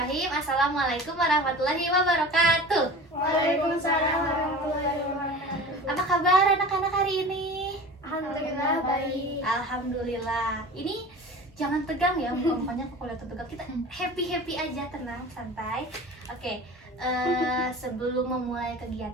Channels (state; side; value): normal; both; correlation 0.37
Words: Assalamualaikum warahmatullahi wabarakatuh. Waalaikumsalam warahmatullahi wabarakatuh. Apa kabar anak-anak hari ini? Alhamdulillah baik. Alhamdulillah. Ini jangan tegang ya, mukanya kalau lihat tegang. Kita happy aja, tenang, santai. Oke. Sebelum memulai